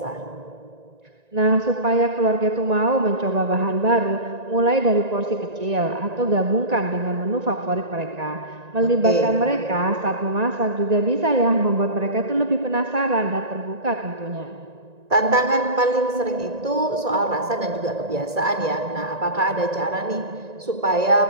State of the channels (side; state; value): left; late; 1.9 ms